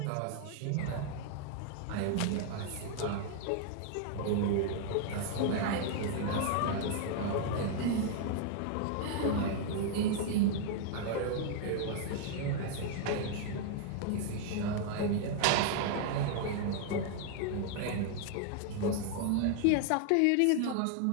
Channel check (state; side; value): different; both; correlation 0.00